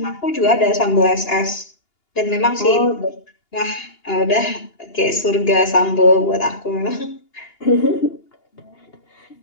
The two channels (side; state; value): right; late; 2.8 ms